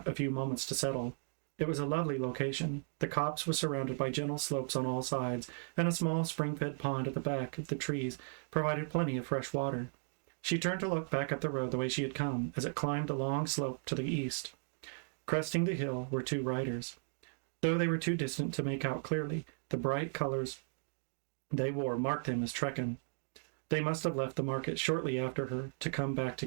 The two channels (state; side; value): silent; left; 54 dB below the other